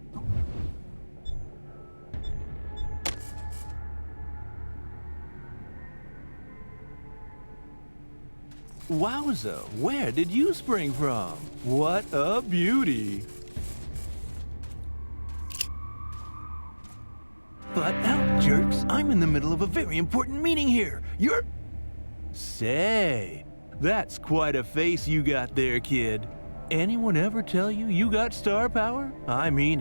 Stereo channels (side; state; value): both; inverted; correlation -1.00